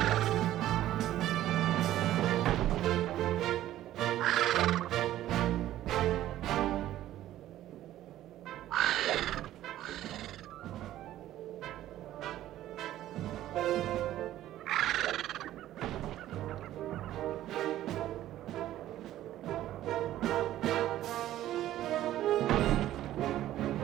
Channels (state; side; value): quieter; left; 13.5 dB